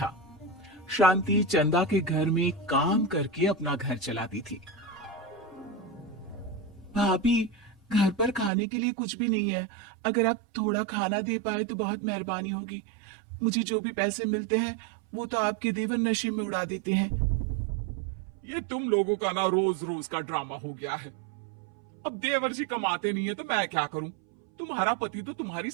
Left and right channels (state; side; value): drops out; left; at 8.5 s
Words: शांति चंदा के घर में काम करके अपना घर चलाती थी। भाभी, घर पर खाने के लिए कुछ भी नहीं है। अगर आप थोड़ा खाना दे पाए तो बहुत मेहरबानी होगी। मुझे जो भी पैसे मिलते हैं वो तो आपके देवर नशे में उड़ा देते हैं। ये तुम लोगों का ना रोज रोज का ड्रामा हो गया है। अब देवर जी कमाते नहीं है तो मैं क्या करूं? तुम्हारा पति तो तुम्हारी